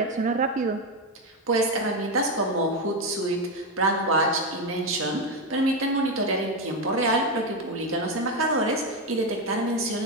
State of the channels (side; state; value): both; normal; correlation 0.10